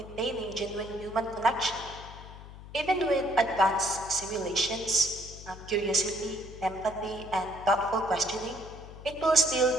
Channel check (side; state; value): left; noise; hum, 15 dB below the sound